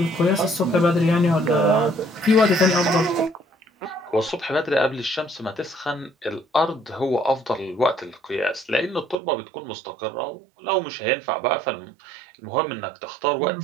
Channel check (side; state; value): left; drops out; at 9.2 s